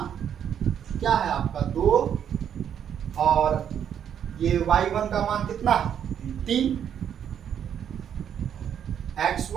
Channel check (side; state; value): left; quieter; 8.9 dB